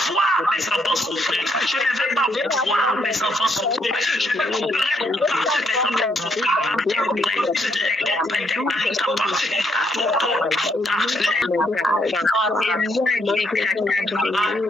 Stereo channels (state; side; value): normal; both; correlation 0.73